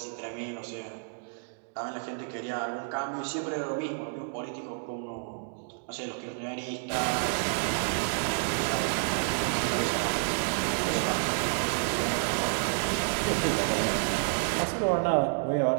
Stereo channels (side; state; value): left; silent; digital silence